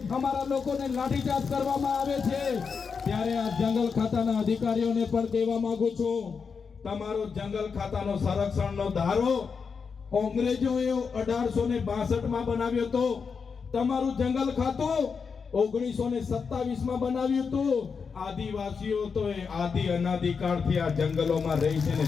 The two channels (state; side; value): quieter; right; 5.7 dB